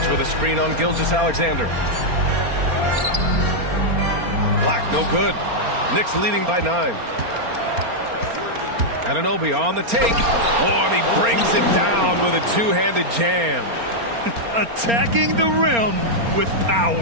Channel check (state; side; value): late; left; 4.3 ms